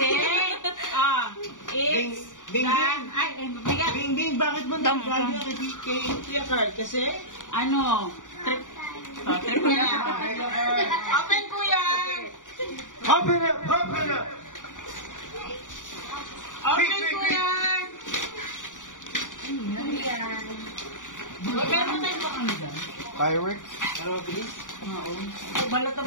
it's Bing, bigat. Bing, bakit mo nagagawa kay Kuya Carl? Kasi? Ano? Trip mo na. Open, Kuya. Open up, open up. Open, Kuya. Meron tayo ba kami dyan? Fireworks. Ano mabilis? Balot na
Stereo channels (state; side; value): late; right; 0.87 ms